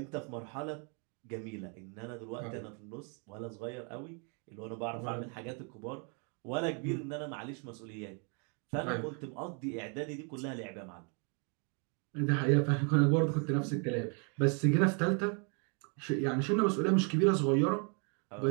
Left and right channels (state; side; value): quieter; left; 37.7 dB